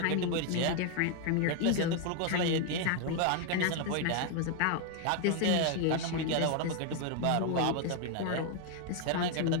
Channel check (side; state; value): both; different; correlation 0.01